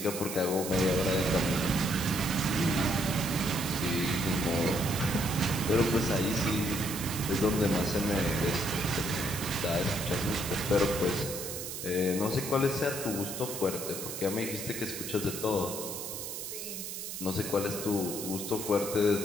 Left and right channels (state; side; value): noise; right; hiss, 7 dB below the sound